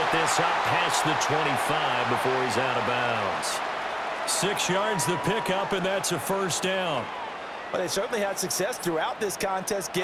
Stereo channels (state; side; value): identical; both; correlation 1.00